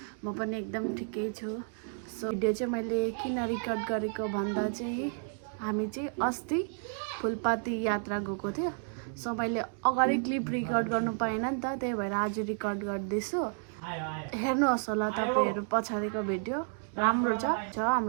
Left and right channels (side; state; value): left; silent; 57 dB below the other